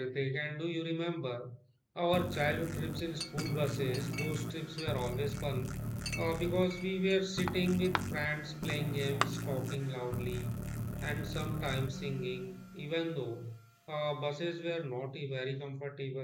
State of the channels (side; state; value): both; identical; correlation 1.00